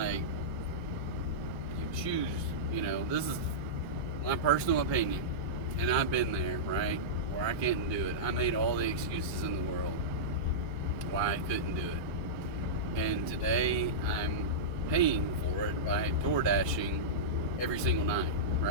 you choose, this is my personal opinion. And I've been there, right? Where I couldn't do it. I made all the excuses in the world why I couldn't do it. And today I'm paying for it by DoorDashing every single night,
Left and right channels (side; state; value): left; late; 1.3 ms